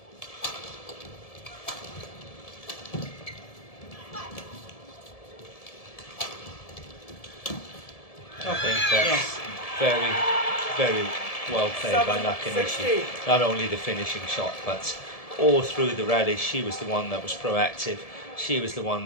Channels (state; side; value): late; right; 1.7 ms